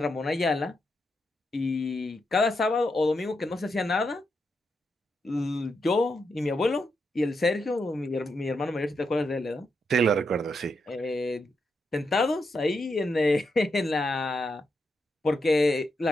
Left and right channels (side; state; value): both; normal; correlation 0.84